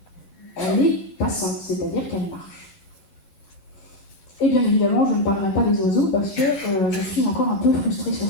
elle est passante, c'est-à-dire qu'elle marche. Et bien évidemment, je ne parlerai pas des oiseaux parce que je suis encore un peu frustrée sur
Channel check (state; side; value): late; right; 12 ms